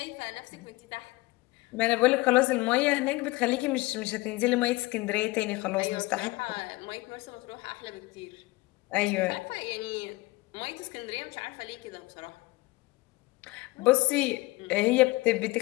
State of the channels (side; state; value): right; quieter; 21.7 dB